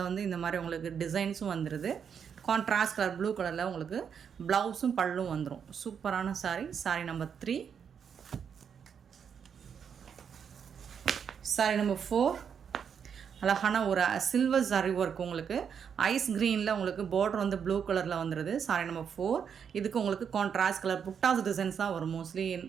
வந்து இந்த மாதிரி உங்களுக்கு டிசைன்ஸும் வந்துடுது. கான்ட்ராஸ்ட் கலர் ப்ளூ கலரில் உங்களுக்கு ப்ளவுஸும் பல்லும் வந்துடும். சூப்பரான sorry. Sorry number 3. Sorry number 4 அழகான ஒரு சில்வர் சாரி ஒர்க். உங்களுக்கு ஐஸ் க்ரீனில் உங்களுக்கு பார்டர் வந்து ப்ளூ கலரில் வந்துடுது. Sorry number 4. இதுக்கு உங்களுக்கு கான்ட்ராஸ்ட் கலர் புட்டாஸ் டிசைன்ஸ் தான் வரும் மோஸ்ட்லி.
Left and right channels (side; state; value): left; quieter; 7.3 dB